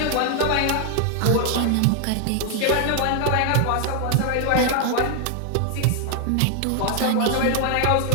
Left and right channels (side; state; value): both; different; correlation 0.00